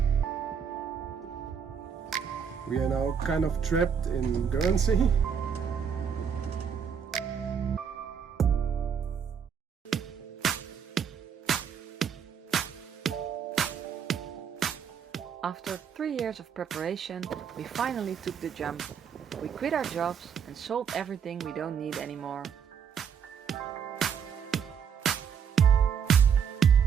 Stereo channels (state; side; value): quieter; left; 7.3 dB